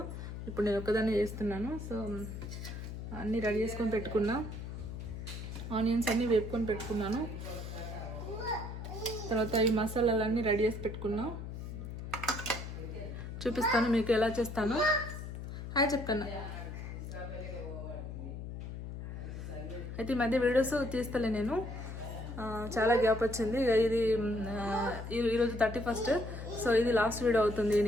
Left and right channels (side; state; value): left; noise; hum, 8 dB below the sound